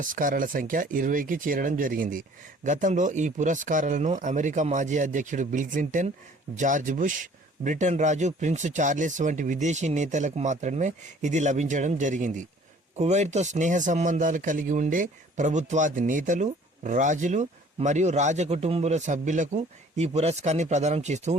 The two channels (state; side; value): normal; both; correlation 0.54